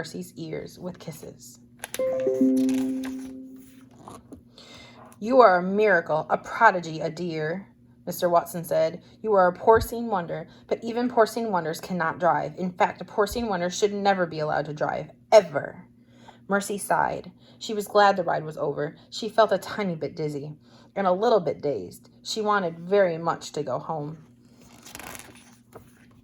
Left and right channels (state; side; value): identical; both; correlation 1.00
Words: ears with kisses. You are a miracle, a prodigy, a dear, Mr. Watson said. You are a porcine wonder, but even porcine wonders cannot drive. In fact, a porcine wonder should never be allowed to drive, ever. Mercy sighed. She was glad the ride was over. She felt a tiny bit dizzy and a little bit dazed. She wanted very much to go home.